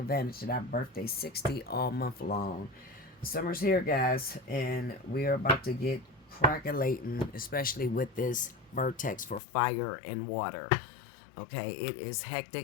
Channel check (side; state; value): right; drops out; at 9.4 s